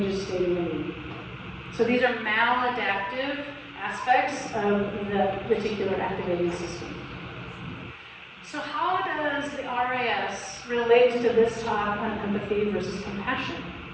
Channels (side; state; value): both; identical; correlation 1.00